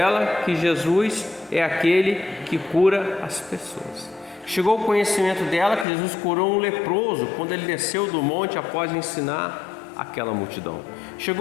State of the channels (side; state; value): right; drops out; at 5.9 s